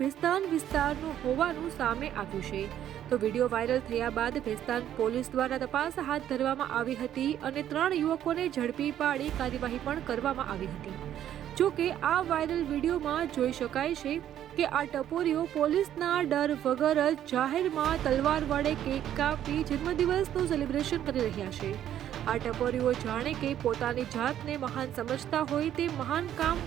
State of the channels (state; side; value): quieter; left; 11.0 dB